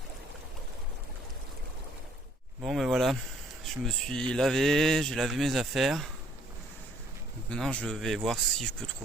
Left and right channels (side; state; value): both; normal; correlation 0.62